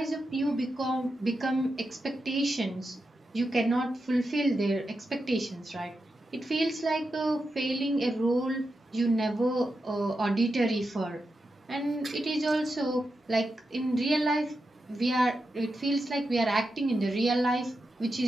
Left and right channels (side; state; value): both; normal; correlation 0.88